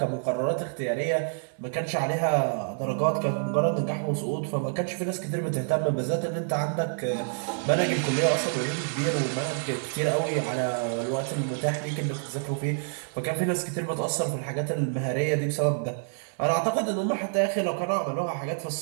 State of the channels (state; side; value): silent; left; digital silence